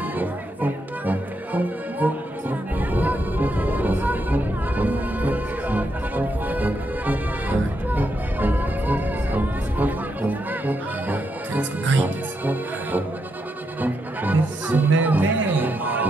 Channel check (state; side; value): normal; both; correlation 0.81